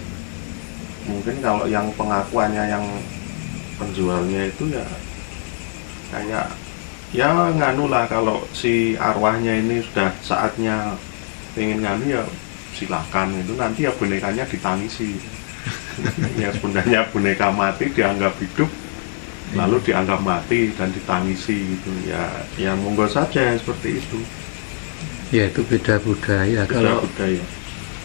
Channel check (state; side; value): silent; right; 64 dB below the other